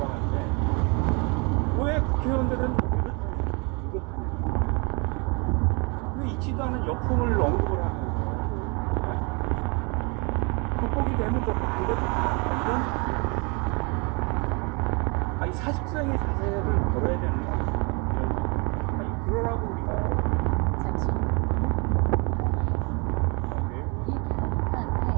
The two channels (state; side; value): quieter; left; 31.6 dB